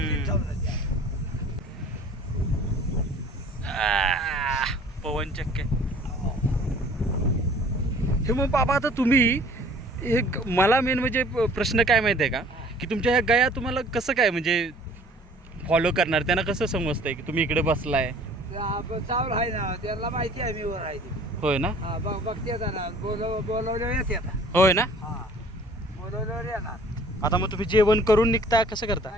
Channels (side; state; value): both; normal; correlation 0.51